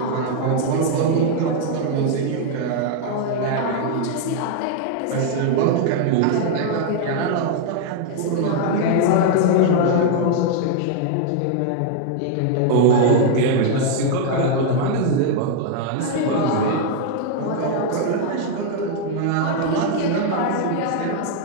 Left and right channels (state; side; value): different; both; correlation 0.00